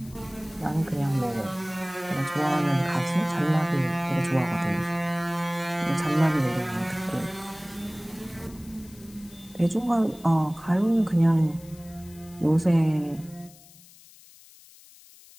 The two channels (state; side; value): noise; left; hiss, 23 dB below the sound